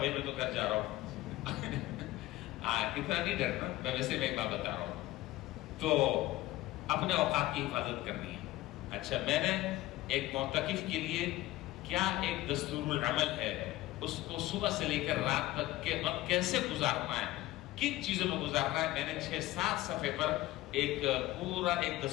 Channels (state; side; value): quieter; right; 16.9 dB